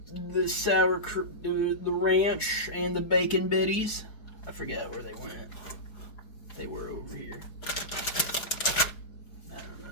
sour the ranch and the bacon bitties? I forget where they went. They were over here. I don't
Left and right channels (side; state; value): right; late; 4.7 ms